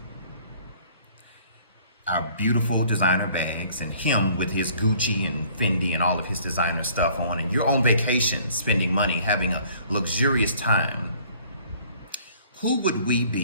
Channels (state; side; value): inverted; both; correlation -0.56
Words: our beautiful designer bags, and him with his Gucci and Fendi and all of his designer stuff on, and you're on vacation, spending money, having a luxurious time. Who would we